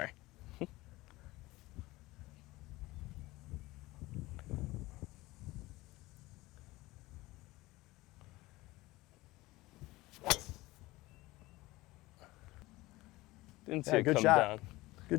Didn't see it good come shot. down.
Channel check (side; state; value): right; quieter; 19.7 dB